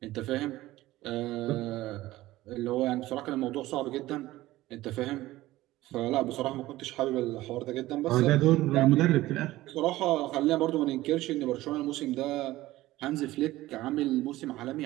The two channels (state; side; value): quieter; left; 16.9 dB